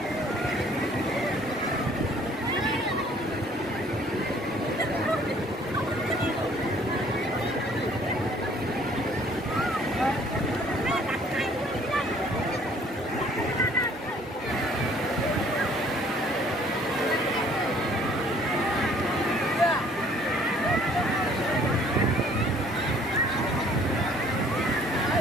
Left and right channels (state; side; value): normal; both; correlation 0.58